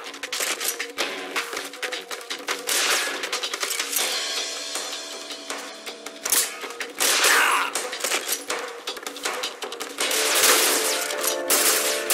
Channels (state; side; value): identical; both; correlation 1.00